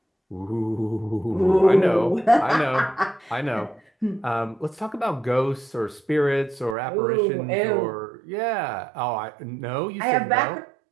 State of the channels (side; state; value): left; drops out; at 6.8 s